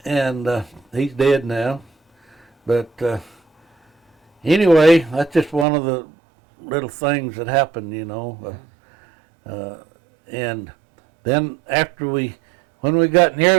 And he's dead now. But anyway, that's just one of the little things that happened, you know. And then when we got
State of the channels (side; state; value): left; drops out; at 5.7 s